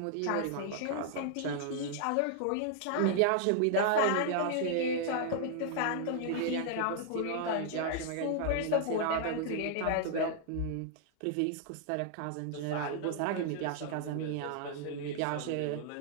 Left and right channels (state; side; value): different; both; correlation -0.01